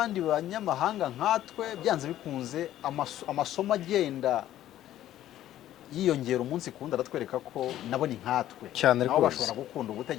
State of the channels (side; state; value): right; quieter; 12.9 dB